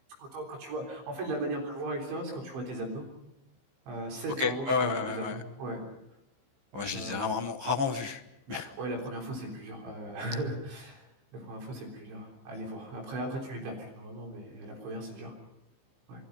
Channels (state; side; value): late; left; 15 ms